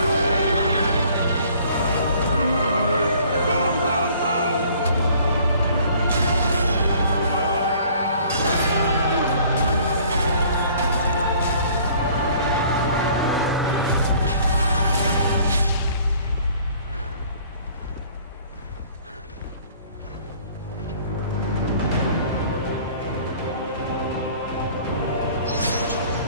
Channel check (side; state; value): both; inverted; correlation -0.55